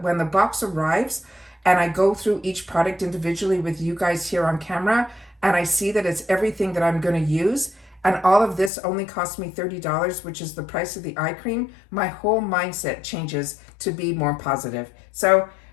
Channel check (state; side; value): drops out; right; at 8.7 s